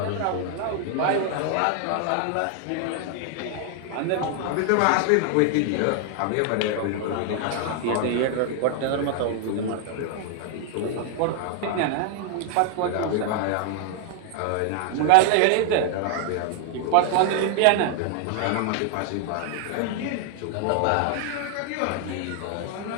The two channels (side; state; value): both; different; correlation 0.00